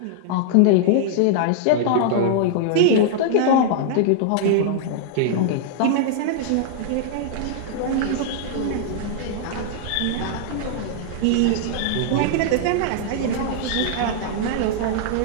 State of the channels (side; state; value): both; different; correlation -0.01